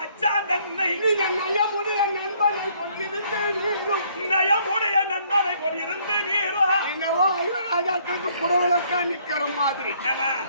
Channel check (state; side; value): inverted; both; correlation -0.64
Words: தன்னை நீங்க நயமுடைய நண்பனை கொண்டிருந்து நீரும் நயமுடைய நண்பனை கொண்டிருந்து நீரோ என்னவோ ஐவராஜாக்களுக்கு புடவலக்கா நிக்கிற மாதிரி